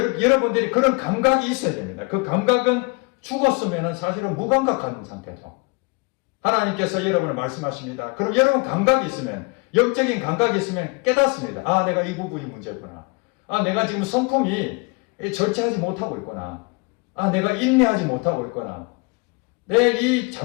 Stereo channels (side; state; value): right; quieter; 29.7 dB